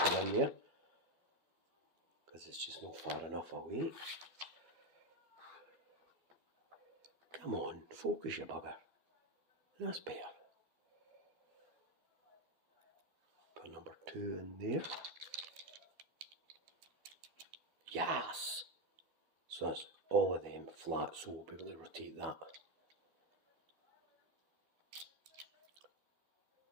in there, because it's just not far enough away. Come on, focus you bugger. That's better. Put number 2 in there. Yes! So that's all of them flat, so we'll be able to rotate that.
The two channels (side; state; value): left; late; 12 ms